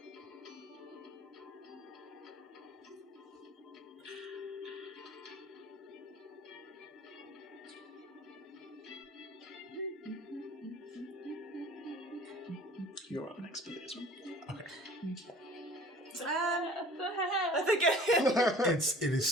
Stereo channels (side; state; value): both; normal; correlation 0.47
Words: You're up next, Billy, as well. I think It is